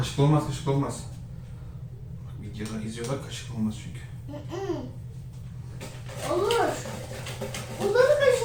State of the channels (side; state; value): both; identical; correlation 1.00